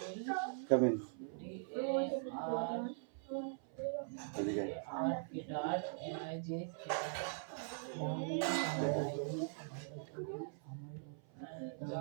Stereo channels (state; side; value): silent; left; 50 dB below the other